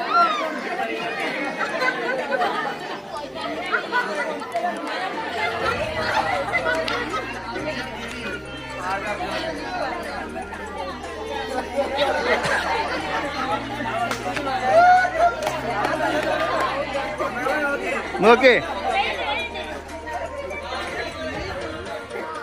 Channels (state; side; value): identical; both; correlation 1.00